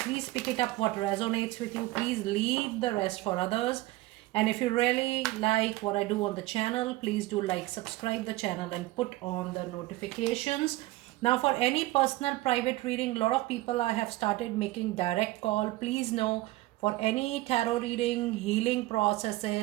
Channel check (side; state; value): left; quieter; 18.5 dB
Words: pick it up what resonates with you. Please leave the rest for others. And if you really like what I do on the channel, please do like, subscribe the channel and put on the notifications. Now for any personal private reading, a lot of people I have started making direct call. Please know, for any tarot reading, healing